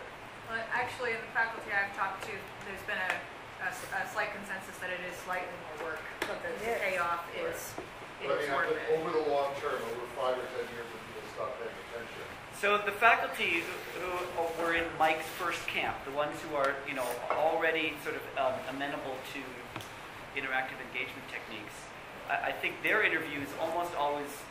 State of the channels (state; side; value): identical; both; correlation 1.00